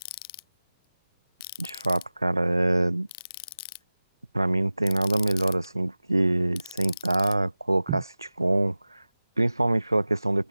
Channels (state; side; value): inverted; both; correlation -0.97